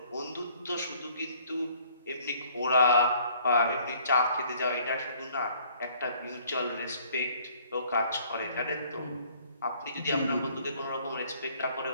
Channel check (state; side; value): inverted; both; correlation -0.59